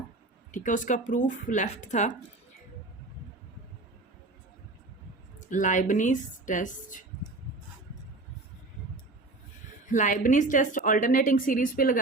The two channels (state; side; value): quieter; left; 3.1 dB